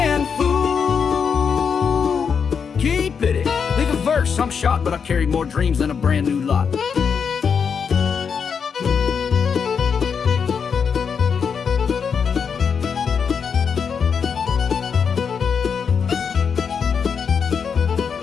fool. Keep it. Leave a verse, I'm shot, but I carry more dreams than a brand new lot.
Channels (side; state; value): right; quieter; 6.4 dB